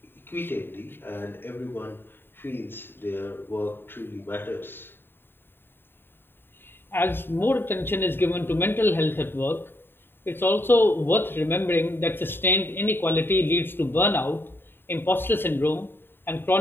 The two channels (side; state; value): right; late; 0.10 ms